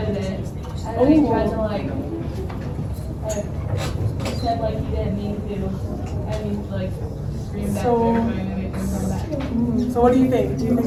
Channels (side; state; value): both; identical; correlation 1.00